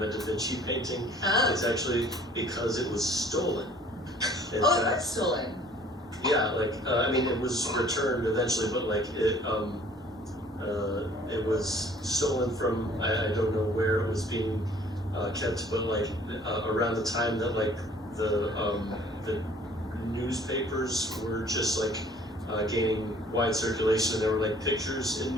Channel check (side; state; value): both; normal; correlation 0.55